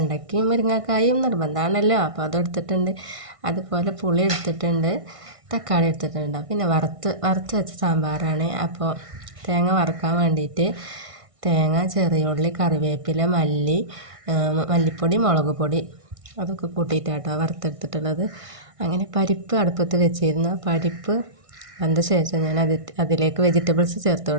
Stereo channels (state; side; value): late; left; 1.6 ms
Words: മുരിങ്ങക്കായും നിർബന്ധമാണല്ലോ, അപ്പോൾ അതെടുത്തിട്ടുണ്ട്. അതുപോലെ പുളി എടുത്തിട്ടുണ്ട്, തക്കാളി എടുത്തിട്ടുണ്ട്. പിന്നെ വറുത്ത് വെച്ച സാമ്പാറാണ്. അപ്പോൾ തേങ്ങ വറുക്കാൻ വേണ്ടിയിട്ട് തേങ്ങ, ചെറിയ ഉള്ളി, കറിവേപ്പില, മല്ലിപ്പൊടി, മുളക് പൊടി അതൊക്കെ കൂട്ടിയിട്ടാട്ടോ വറുത്തെടുത്തിട്ടുള്ളത്. അങ്ങനെ പരിപ്പ് അടുപ്പത്ത് വെച്ചിരുന്ന പരിപ്പ് വന്ന ശേഷം ഞാൻ അതിലേക്ക് വെജിറ്റബിൾസ് ചേർത്ത്